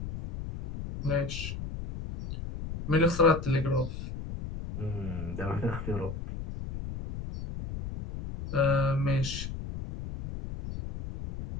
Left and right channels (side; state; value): left; noise; rumble, 8 dB below the sound